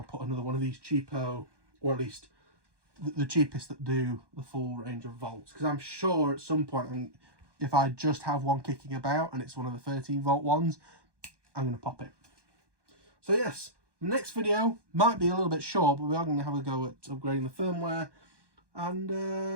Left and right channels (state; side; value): late; left; 1.2 ms